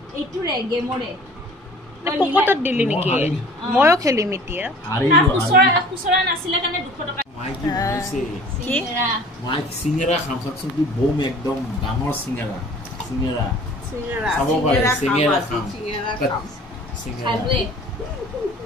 পকেটত দিলি নেকি? ময়ো খেলিম এতিয়া। চিঙেৰা খাম চাকচোন, বম একদম ডাঙৰ চিঙেৰা চাব পাৰে। চিঙেৰা খাম।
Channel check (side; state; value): both; normal; correlation 0.48